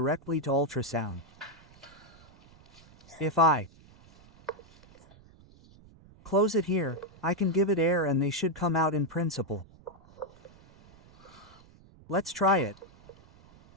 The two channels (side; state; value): right; noise; rumble, 25 dB below the sound